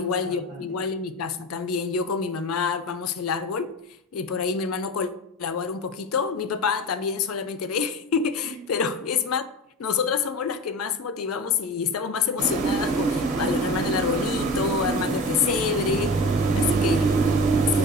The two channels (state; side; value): normal; both; correlation 0.30